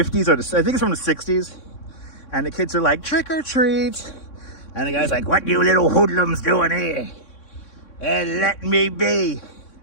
or I think it's from the 60s. And the kids are like, trick or treat. And the guy's like, what you little hoodlums doing here? And let me be.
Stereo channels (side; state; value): right; late; 3.6 ms